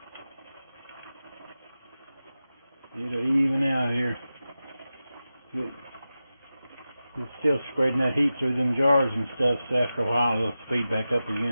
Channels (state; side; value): inverted; both; correlation -0.93